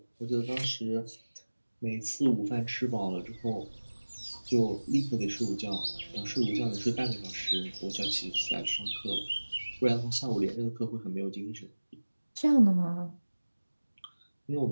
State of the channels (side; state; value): both; inverted; correlation -1.00